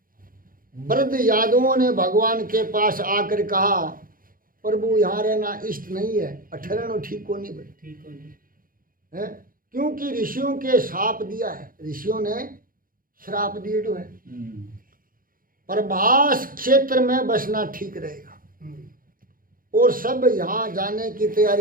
वृद्ध यादवों ने भगवान के पास आकर कहा, प्रभु यहाँ रहना इष्ट नहीं है, ठहरना ठीक को नहीं है, क्योंकि ऋषियों के श्राप दिया है, ऋषियों ने श्राप दिए तो है। प्रभास क्षेत्र में बसना ठीक रहेगा। और सब यहाँ जाने की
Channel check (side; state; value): left; late; 0.41 ms